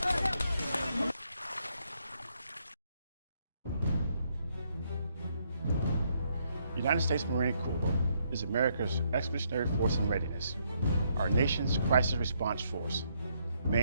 The United States Marine Corps is America's expeditionary force in readiness, our nation's crisis response force,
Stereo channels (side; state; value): both; inverted; correlation -0.74